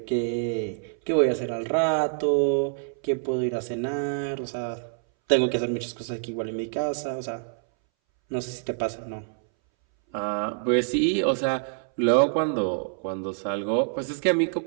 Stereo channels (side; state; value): left; silent; 60 dB below the other